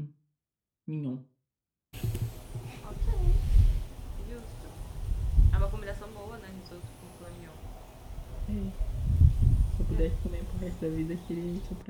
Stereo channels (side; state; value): both; identical; correlation 1.00